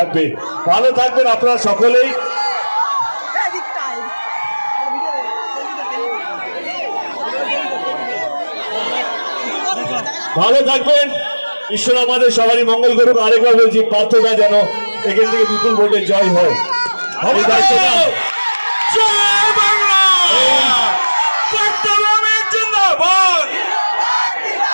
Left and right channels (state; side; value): inverted; both; correlation -1.00